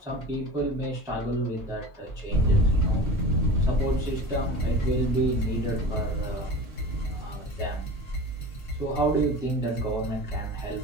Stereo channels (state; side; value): normal; both; correlation 0.35